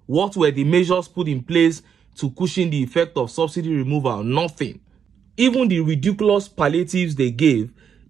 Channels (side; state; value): left; quieter; 7.5 dB